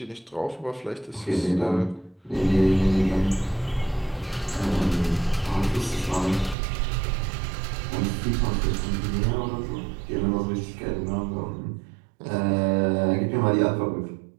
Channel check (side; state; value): left; drops out; at 6.6 s